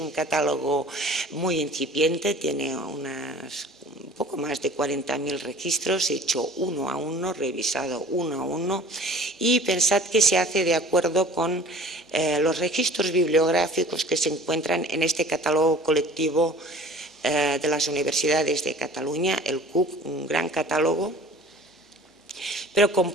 catálogo muy incipiente, tiene un poco más de 40.000 registros, hecho uno a uno, revisado uno a uno, y pensad que se hace de acuerdo con los registros bibliográficos que se encuentran en este catálogo colectivo de las universidades de Cataluña, el CUC, un gran catálogo, pero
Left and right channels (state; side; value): normal; both; correlation 0.46